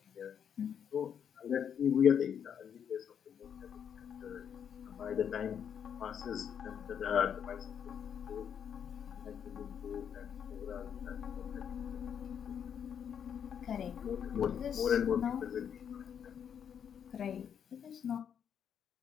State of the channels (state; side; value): quieter; right; 8.2 dB